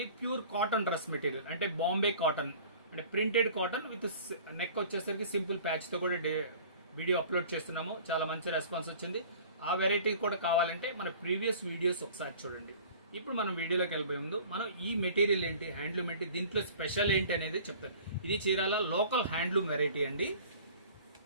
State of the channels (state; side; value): inverted; both; correlation -0.46